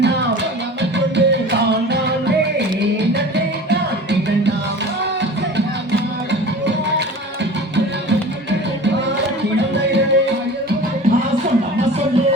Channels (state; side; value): normal; both; correlation 0.38